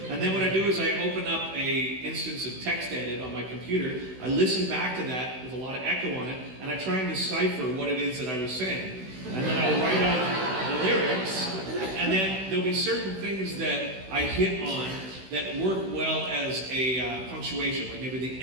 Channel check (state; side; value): late; left; 16 ms